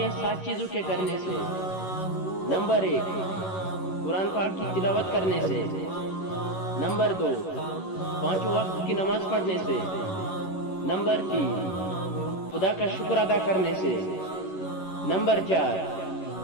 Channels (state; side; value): late; right; 11 ms